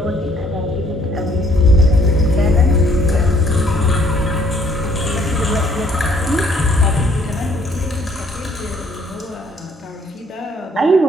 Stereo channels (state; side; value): normal; both; correlation 0.63